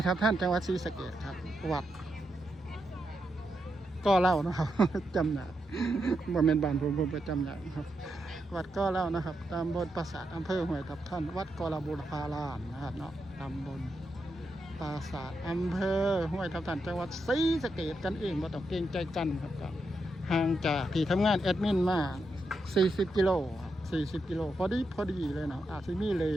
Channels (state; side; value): normal; both; correlation 0.84